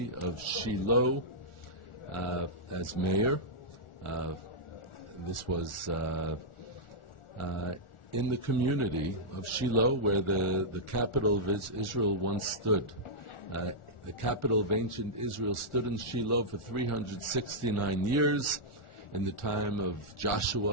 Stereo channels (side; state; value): right; late; 1.4 ms